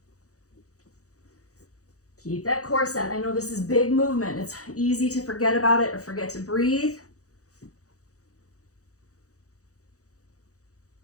Keep that core set. I know this is big movement. It's easy to forget about it or forget to breathe.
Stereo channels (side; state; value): right; late; 0.66 ms